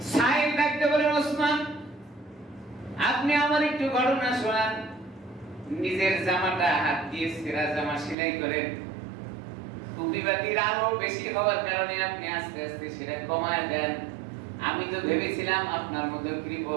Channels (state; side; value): drops out; left; at 8.2 s